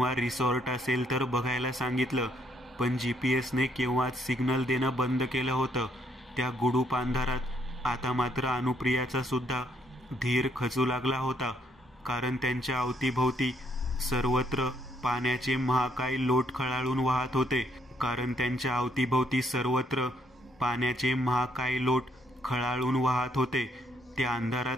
रिसॉर्ट असेल तर बघायला सांगितलं, पण GPS ने केव्हाच सिग्नल देणं बंद केलं होतं. त्या गुडूप अंधारात आता मात्र अनुप्रियाचा सुद्धा धीर खचू लागला होता, कारण त्यांच्या अवतीभोवती सर्वत्र पाण्याचे महाकाय लोट खळाळून वाहत होते. त्या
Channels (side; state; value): both; normal; correlation 0.71